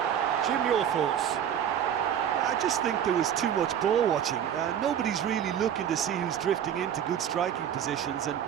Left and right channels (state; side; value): quieter; left; 9.3 dB